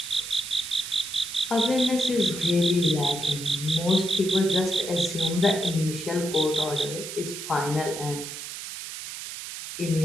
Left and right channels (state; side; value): noise; right; hiss, 9 dB below the sound